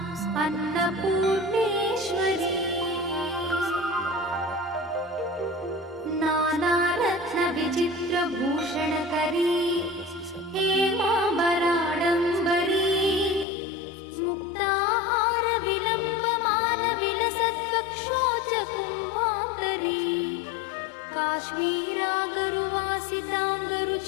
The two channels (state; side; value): drops out; right; at 13.5 s